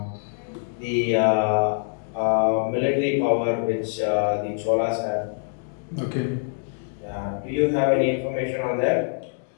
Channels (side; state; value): right; silent; digital silence